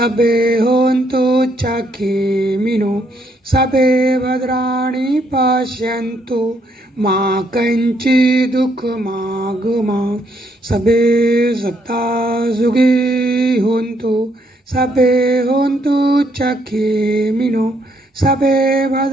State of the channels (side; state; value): both; normal; correlation 0.72